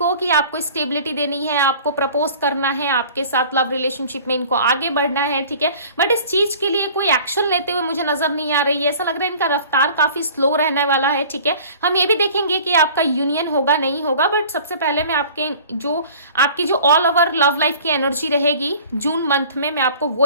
कि आपको स्टेबिलिटी देनी है, आपको प्रपोज करना है, आपके साथ लव रिलेशनशिप में इनको आगे बढ़ना है, ठीक है, बट इस चीज के लिए कोई एक्शन लेते हुए मुझे नजर नहीं आ रही है। ऐसा लग रहा है इनका रफ्तार काफी स्लो रहने वाला है, ठीक है। हम ये भी देखेंगे कि आपका यूनियन होगा नहीं होगा, बट सबसे पहले मैं आपकी जो ऑल ओवर लव लाइफ की एनर्जी रहेगी जून मंथ में, मैं आपको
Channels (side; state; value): both; inverted; correlation -0.46